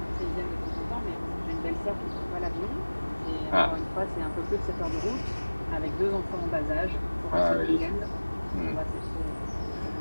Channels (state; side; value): inverted; both; correlation -1.00